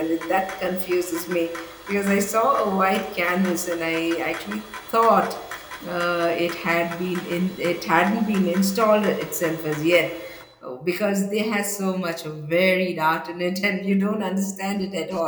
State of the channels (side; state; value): both; identical; correlation 1.00